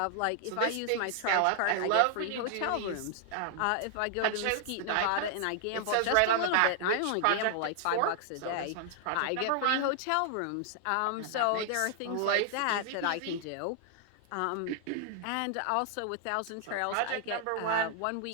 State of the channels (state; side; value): different; both; correlation 0.00